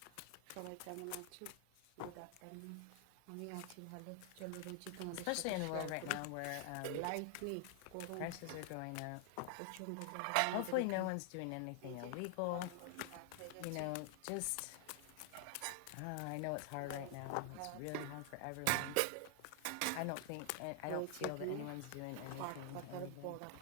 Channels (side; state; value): both; different; correlation 0.00